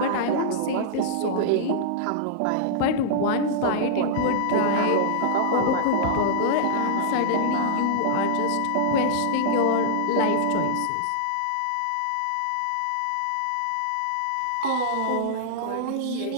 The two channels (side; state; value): both; different; correlation -0.02